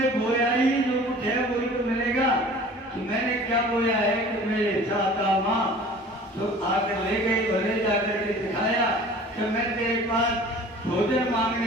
बोया ही जो कुछ है वही तो मिलेगा। कि मैंने क्या बोया है कि मेरे चाहता माँ तो आकर ले गई, भले जाकर के दिखाया कि मैं तेरे पास भोजन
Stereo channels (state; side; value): normal; both; correlation 0.45